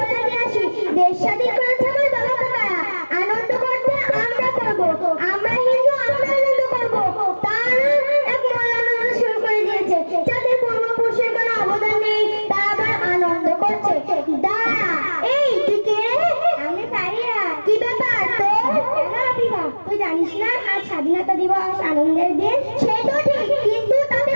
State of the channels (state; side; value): inverted; both; correlation -1.00